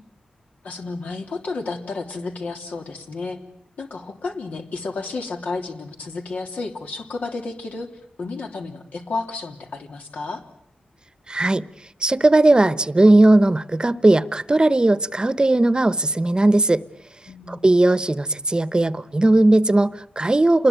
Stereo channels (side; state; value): both; normal; correlation 0.94